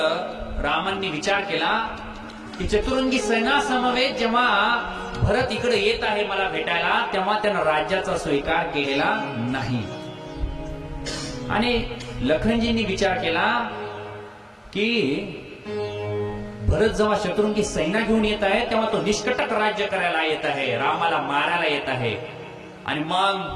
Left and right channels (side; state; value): both; identical; correlation 1.00